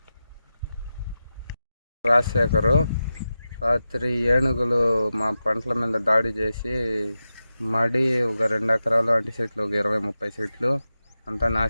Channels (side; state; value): both; inverted; correlation -0.92